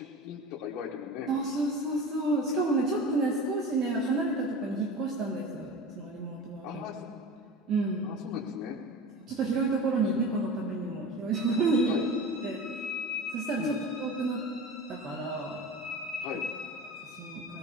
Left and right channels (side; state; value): both; normal; correlation 0.33